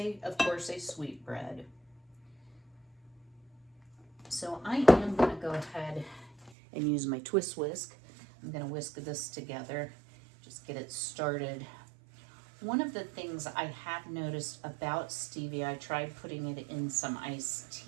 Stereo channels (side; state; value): left; drops out; at 6.5 s